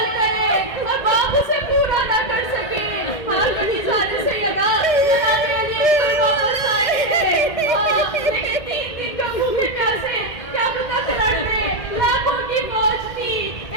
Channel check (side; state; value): right; late; 1.8 ms